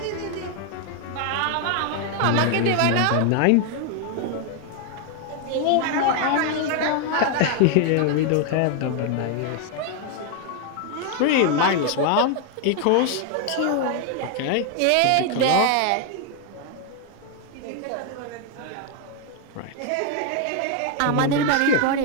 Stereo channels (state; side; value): different; both; correlation 0.00